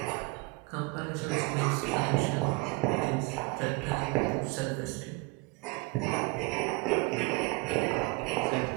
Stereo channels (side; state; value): left; quieter; 27.5 dB